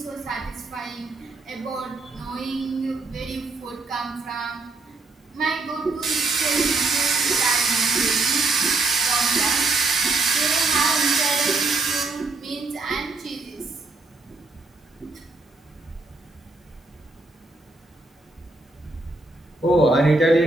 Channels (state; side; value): quieter; left; 3.4 dB